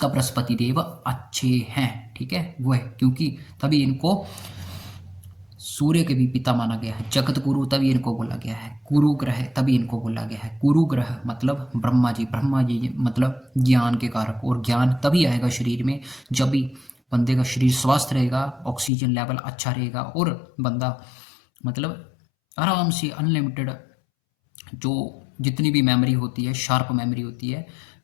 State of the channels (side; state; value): right; drops out; at 18.9 s